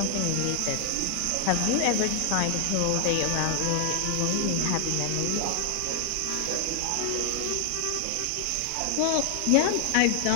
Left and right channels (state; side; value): different; both; correlation 0.00